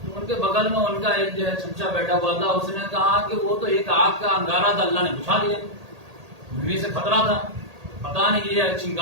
ان کے بغل میں ان کا ایک جو ہے چمچا بیٹھا ہوا تھا، اس نے کہا کہ وہ تو ایک آگ کا انگارہ تھا، اللہ نے بجھا دیا. دنیا سے خطرہ تھا، پتا نہیں یہ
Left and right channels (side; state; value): left; late; 1.8 ms